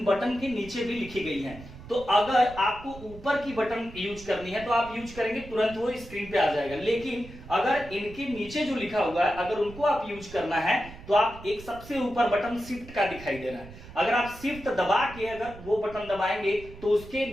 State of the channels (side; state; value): right; noise; rumble, 16 dB below the sound